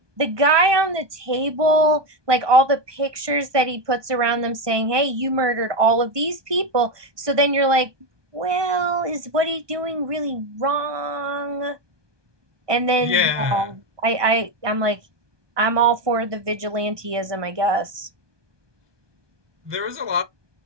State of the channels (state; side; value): late; left; 1.2 ms